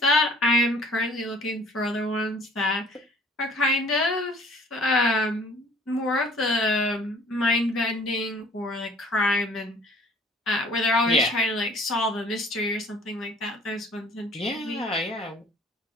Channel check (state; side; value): normal; both; correlation 0.53